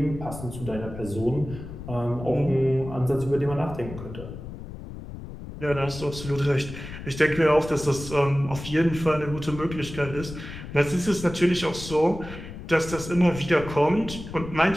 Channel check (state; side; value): noise; left; rumble, 11 dB below the sound